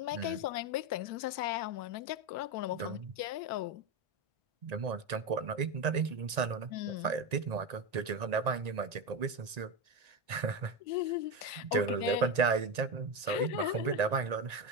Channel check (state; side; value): late; left; 1.9 ms